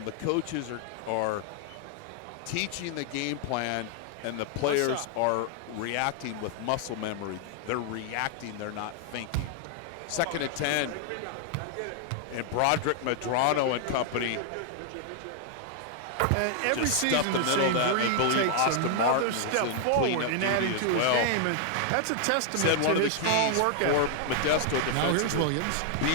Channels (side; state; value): both; different; correlation 0.00